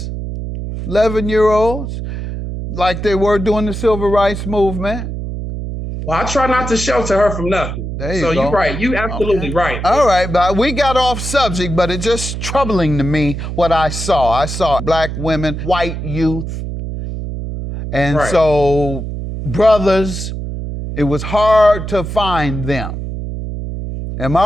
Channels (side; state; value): right; noise; hum, 6 dB below the sound